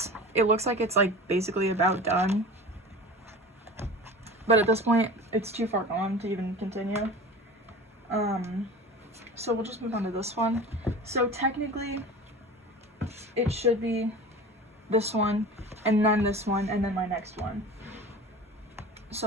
it looks like it's, like, basically about done. But at this point, it's too far gone to even continue. So we'll just move on to this one. So technically, it should be this one, and then this one, and then my next one.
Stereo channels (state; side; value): normal; both; correlation 0.36